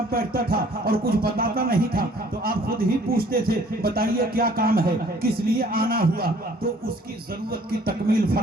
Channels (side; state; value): both; normal; correlation 0.56